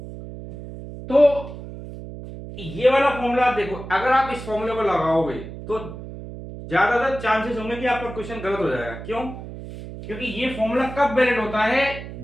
तो ये वाला फॉर्मूला देखो, अगर आप इस फॉर्मूले को लगाओगे तो ज्यादातर चांसेस होंगे कि आपका क्वेश्चन गलत हो जाएगा। क्यों? क्योंकि ये फॉर्मूला कब वैलिड होता है,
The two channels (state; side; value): noise; right; hum, 11 dB below the sound